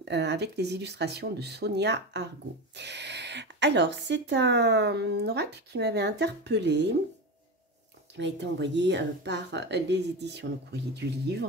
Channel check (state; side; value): normal; both; correlation 0.21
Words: avec les illustrations de Sonia Argot. Alors, c'est un oracle qui m'avait interpellée, qui m'a été envoyé par les éditions Le Courrier du